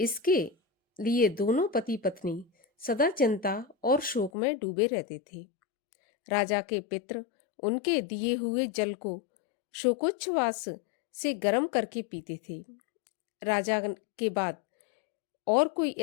लिए दोनों पति पत्नी सदा चिंता और शोक में डूबे रहते थे। राजा के पित्र उनके दिए हुए जल को शोकोच्छ्वास से गर्म करके पीते थे। राजा के बाद और कोई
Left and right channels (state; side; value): drops out; right; at 4.3 s